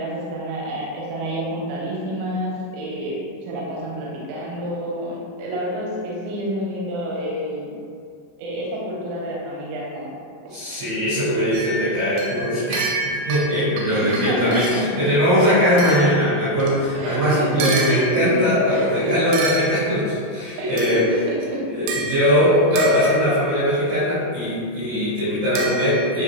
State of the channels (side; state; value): left; late; 31 ms